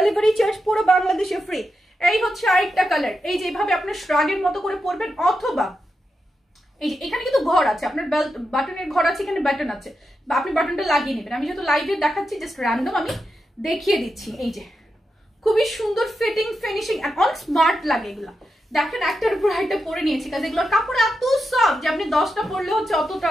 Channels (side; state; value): both; normal; correlation 0.87